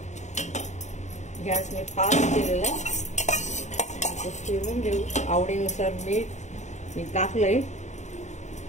गॅस मी फास्ट केलेला आहे। फिरवून घेऊ। आवडीनुसार मीठ मी टाकलंय,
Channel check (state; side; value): late; right; 0.34 ms